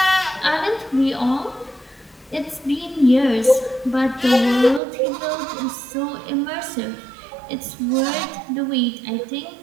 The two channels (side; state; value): left; drops out; at 4.8 s